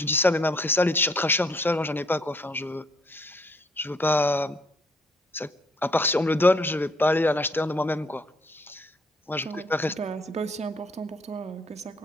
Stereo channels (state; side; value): normal; both; correlation 0.65